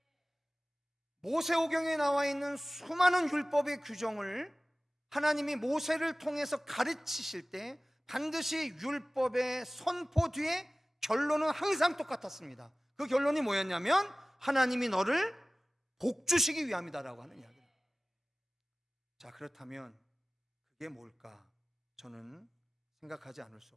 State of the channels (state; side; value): normal; both; correlation 0.97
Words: 모세오경에 나와 있는 수많은 율법의 규정을 하나님이 모세를 통해서 가르치실 때 반드시 율법의 선포 뒤에 결론은 항상 똑같았습니다. 그 결론이 뭐였냐면 하나님이 너를 복주시기 위함이다라고 하는 이야기입니다. 자, 그렇다면 그게 뭘까? 저는 생각하지 않을 수